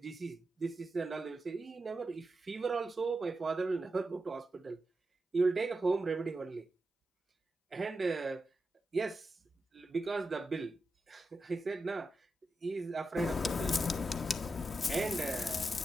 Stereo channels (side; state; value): both; normal; correlation 0.89